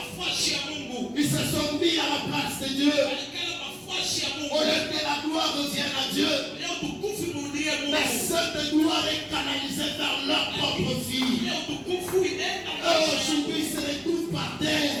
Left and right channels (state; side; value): identical; both; correlation 1.00